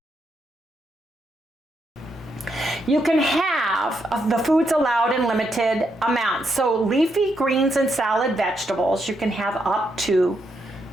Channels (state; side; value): normal; both; correlation 0.80